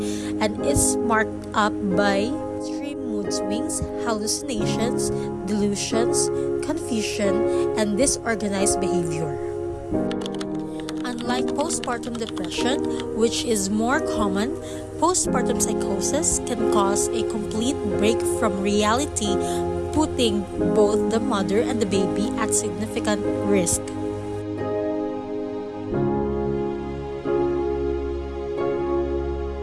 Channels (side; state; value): both; identical; correlation 1.00